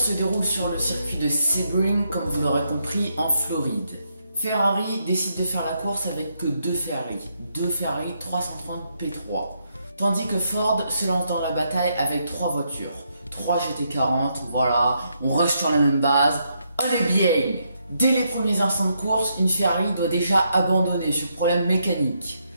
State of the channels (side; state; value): both; inverted; correlation -0.78